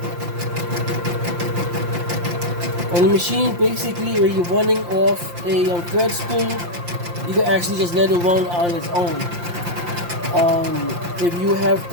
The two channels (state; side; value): late; left; 5.7 ms